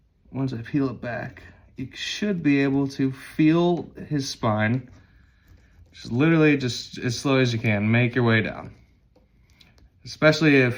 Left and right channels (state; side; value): identical; both; correlation 1.00